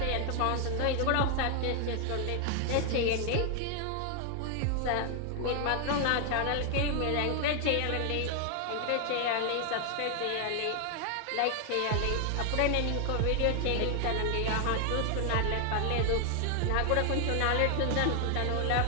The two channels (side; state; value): both; different; correlation 0.00